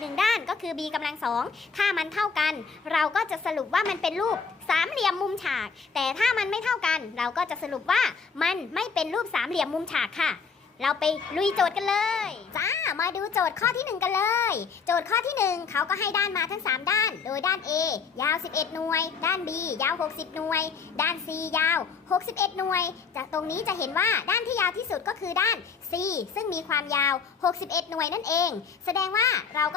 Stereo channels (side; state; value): right; quieter; 5.4 dB